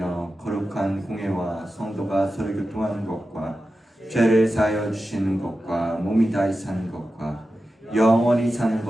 거룩한 공회와 성도가 서로 교통하는 것과 죄를 사하여 주시는 것과 몸이 다시 사는 것과 영원히 사는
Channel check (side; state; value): both; normal; correlation 0.92